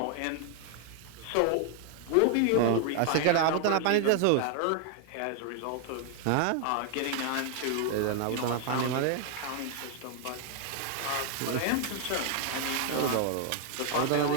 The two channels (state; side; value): different; both; correlation 0.00